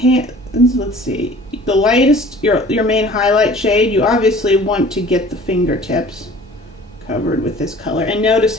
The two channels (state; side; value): normal; both; correlation 0.48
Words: let's see, the lightest, your main highlight shade, you obviously want to get the fingertips covered with this color. And notice